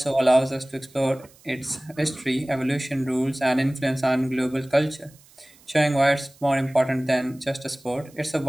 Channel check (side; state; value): right; noise; hiss, 27 dB below the sound